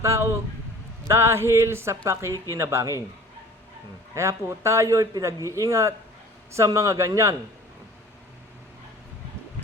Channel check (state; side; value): normal; both; correlation 0.45